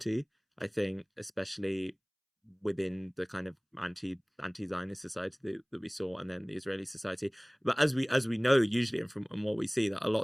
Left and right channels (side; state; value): both; identical; correlation 1.00